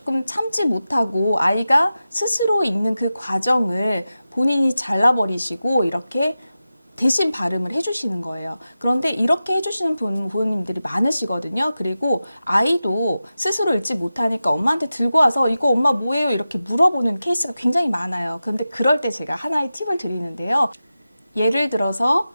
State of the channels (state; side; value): inverted; both; correlation -0.93